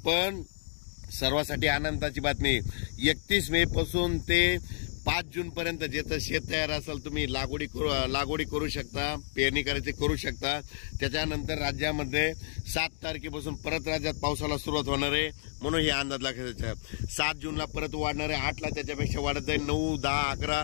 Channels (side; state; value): right; silent; digital silence